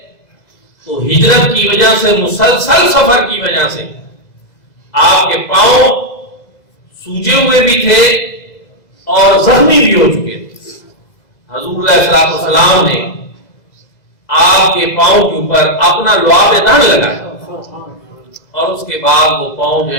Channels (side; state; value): right; late; 2.0 ms